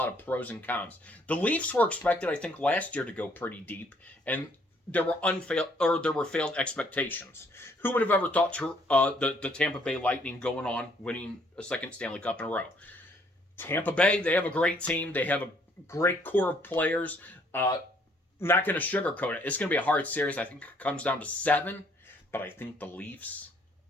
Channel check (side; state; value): both; normal; correlation 0.65